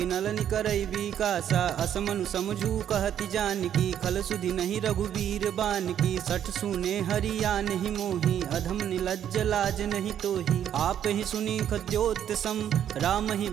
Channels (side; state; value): left; quieter; 9.9 dB